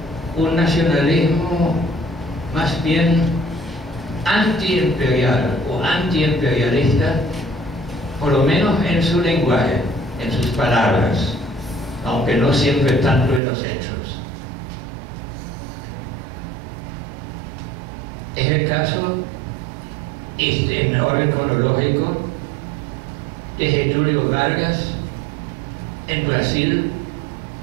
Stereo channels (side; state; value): left; drops out; at 13.4 s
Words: un nacionalismo más bien antiimperial o antiimperialista, por lo menos en su lenguaje, en sus palabras, aunque no siempre tanto en los hechos. Es el caso, en orden cronológico, de Getúlio Vargas en Brasil,